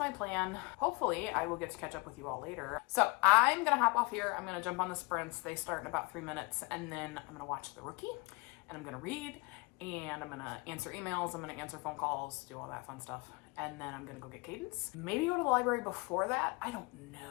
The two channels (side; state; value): right; quieter; 27.8 dB